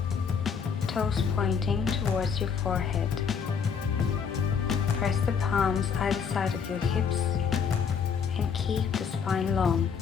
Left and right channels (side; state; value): right; quieter; 6.5 dB